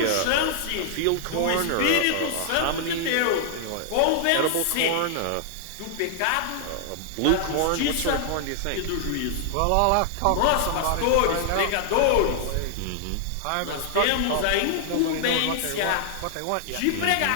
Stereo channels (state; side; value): different; both; correlation -0.01